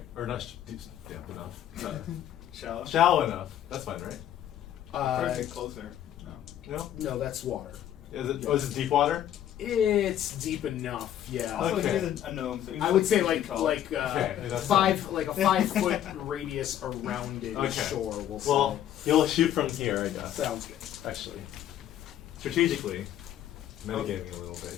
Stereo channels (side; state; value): right; quieter; 11.1 dB